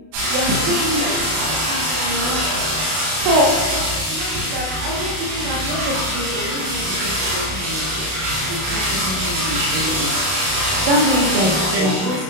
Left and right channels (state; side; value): late; left; 32 ms